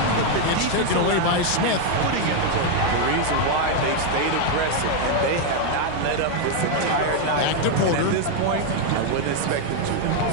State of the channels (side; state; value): both; different; correlation 0.01